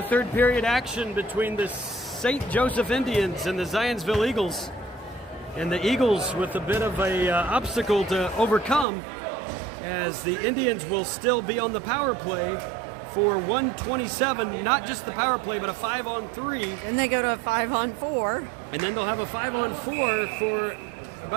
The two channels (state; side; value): drops out; left; at 8.8 s